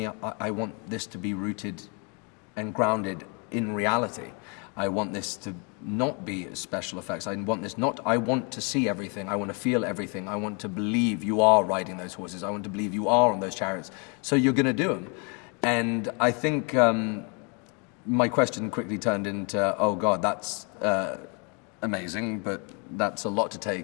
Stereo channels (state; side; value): quieter; right; 35.0 dB